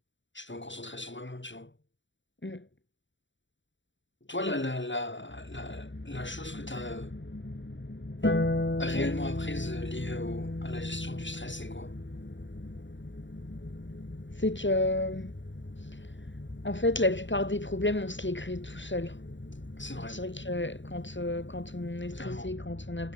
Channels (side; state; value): right; late; 0.54 ms